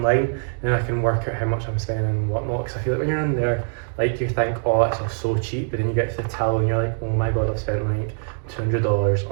and then I can work out how much I'm spending and whatnot, because I feel like when you're in there, like you think, oh, it's all so cheap, but then you get to the till and you're like, oh my god, I've spent like $200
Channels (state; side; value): silent; left; digital silence